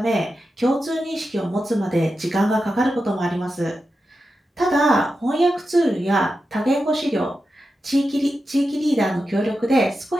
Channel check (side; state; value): both; normal; correlation 0.90